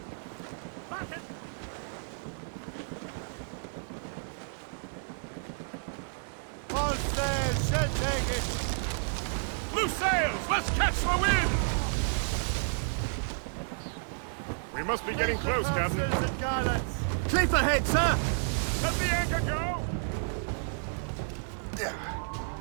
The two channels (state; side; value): silent; left; 57 dB below the other